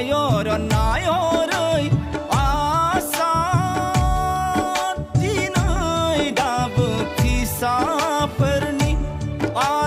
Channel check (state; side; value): identical; both; correlation 1.00